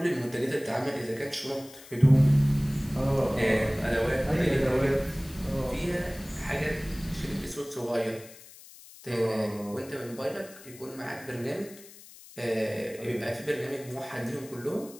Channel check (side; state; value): left; noise; hiss, 19 dB below the sound